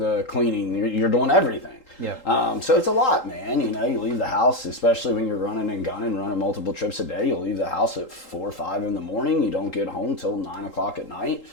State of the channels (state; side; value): late; right; 3.8 ms